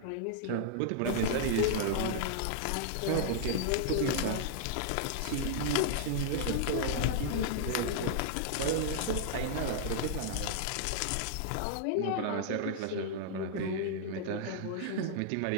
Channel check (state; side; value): different; both; correlation -0.01